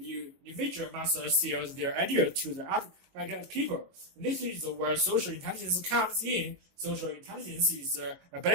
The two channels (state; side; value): late; left; 22 ms